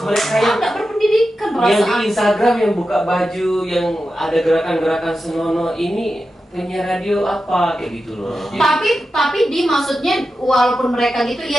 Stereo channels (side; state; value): both; normal; correlation 0.91